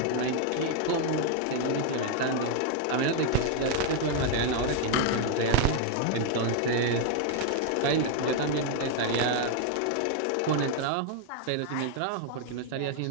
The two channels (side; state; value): both; different; correlation 0.00